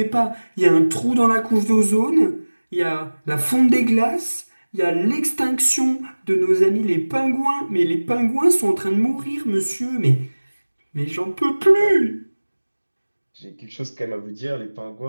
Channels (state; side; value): inverted; both; correlation -1.00